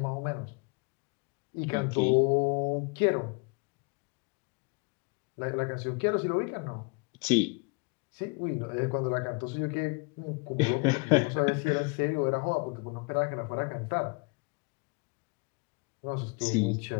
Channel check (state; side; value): quieter; right; 30.1 dB